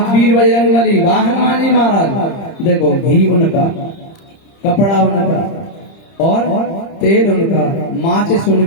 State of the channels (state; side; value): late; right; 30 ms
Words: वीर बजरंग बली, वाह हनुमान जी महाराज, देखो घी उनका, कपड़ा उनका और तेल उनका, माचिस